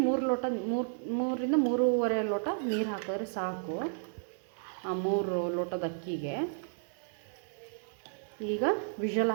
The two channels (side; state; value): left; silent; 56 dB below the other